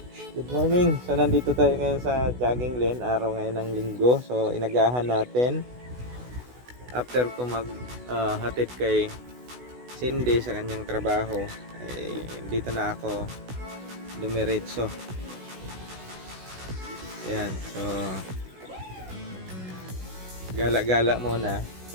good morning. So, nandito tayo ngayon sa jogging lane. Araw ngayon ng linggo. So, inagahan natin. After ko hatid kay Cindy sa kanyang trabaho, ay dito na ako dumiretso. Ayan. So, gala-gala muna.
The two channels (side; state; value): left; late; 16 ms